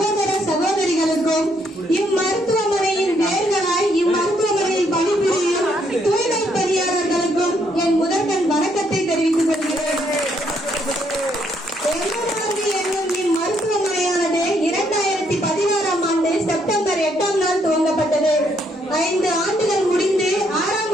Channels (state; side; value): normal; both; correlation 0.72